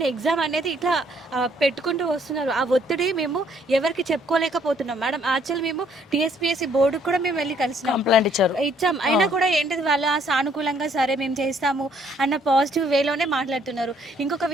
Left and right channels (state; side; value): normal; both; correlation 0.65